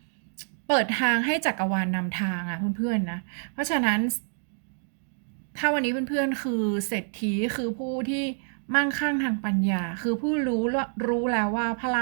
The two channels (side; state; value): left; silent; digital silence